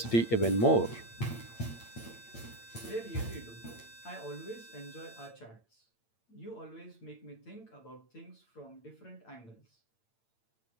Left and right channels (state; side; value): late; right; 8.8 ms